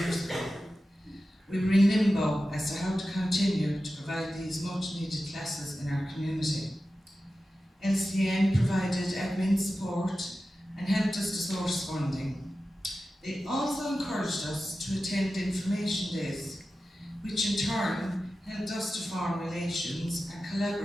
years ago. We were in limbo as to how to continue to provide these much needed classes in our community. LCN provided admin support and helped us to source funding. They also encouraged us to attend information days, which in turn helped us to form relations and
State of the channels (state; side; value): normal; both; correlation 0.93